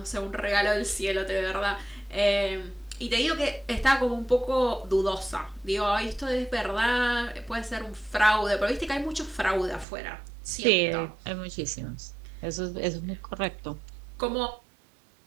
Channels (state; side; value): drops out; left; at 9.9 s